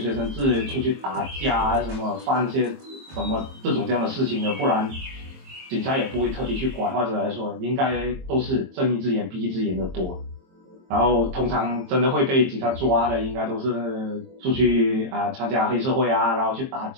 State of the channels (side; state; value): left; late; 22 ms